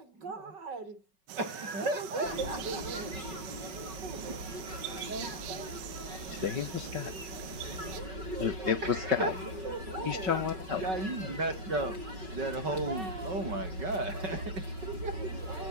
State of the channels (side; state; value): left; late; 5.3 ms